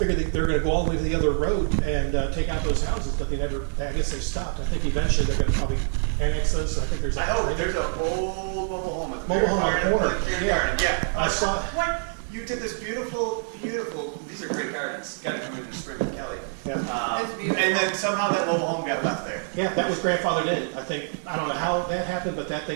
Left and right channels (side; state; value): left; silent; 61 dB below the other